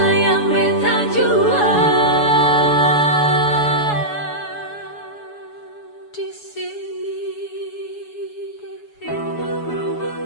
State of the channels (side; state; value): right; late; 7.1 ms